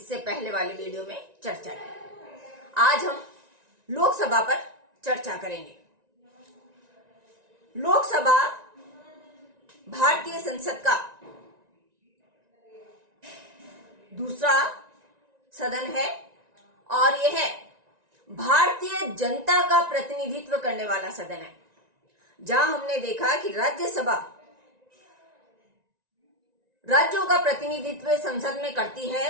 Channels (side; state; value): left; late; 1.9 ms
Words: पहले वाले वीडियो में चर्चा की। आज हम लोकसभा पर चर्चा करेंगे। लोकसभा भारतीय संसद का दूसरा सदन है और यह भारतीय जनता का प्रतिनिधित्व करने वाला सदन है। जहां हमने देखा कि राज्यसभा राज्यों का प्रतिनिधित्व संसद में करती है,